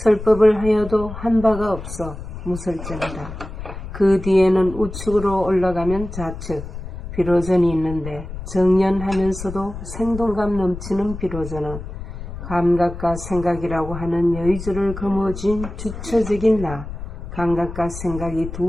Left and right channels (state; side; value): noise; left; rumble, 10 dB below the sound